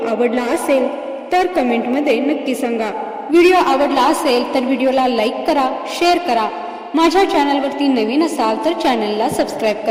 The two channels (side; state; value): both; identical; correlation 1.00